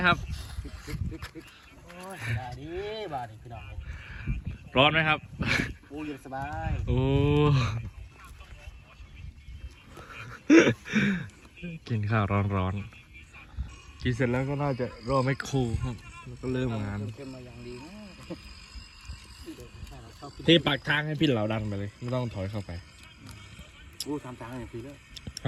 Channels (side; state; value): both; identical; correlation 1.00